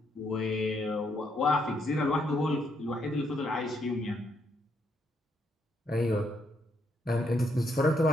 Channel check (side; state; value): both; normal; correlation 0.75